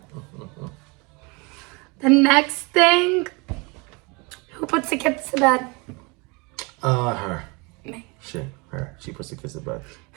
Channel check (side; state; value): left; quieter; 28.4 dB